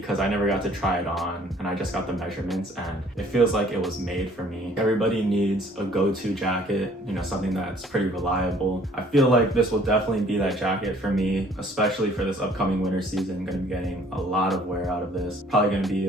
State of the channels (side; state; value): both; normal; correlation 0.57